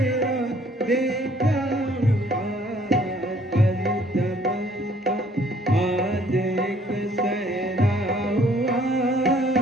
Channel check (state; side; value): normal; both; correlation 0.60